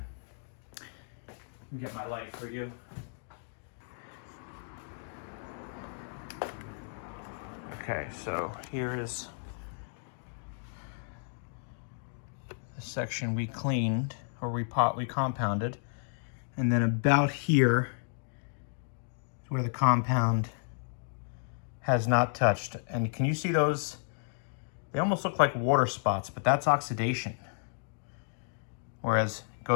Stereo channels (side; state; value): right; silent; digital silence